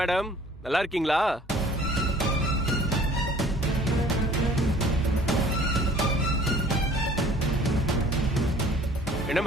நல்லா இருக்கீங்களா? என்ன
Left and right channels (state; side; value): normal; both; correlation 0.52